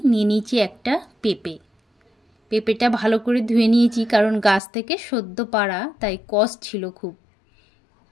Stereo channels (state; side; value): drops out; right; at 4.6 s